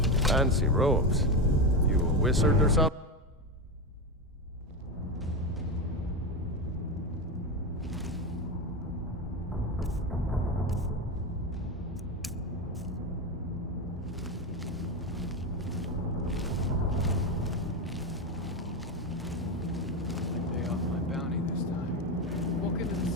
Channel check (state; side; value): normal; both; correlation 0.15